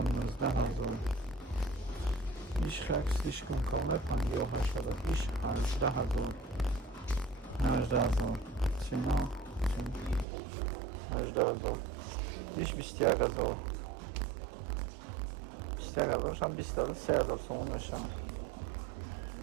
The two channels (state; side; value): drops out; left; at 10.2 s